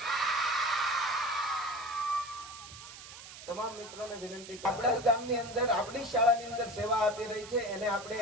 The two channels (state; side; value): noise; right; hiss, 14 dB below the sound